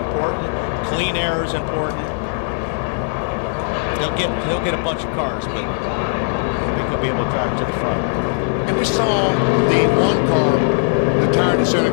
Clean air is important. He'll get a bunch of cars, but I think he'll be able to drive it to the front. And we saw the one car, the tire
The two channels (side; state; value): right; silent; digital silence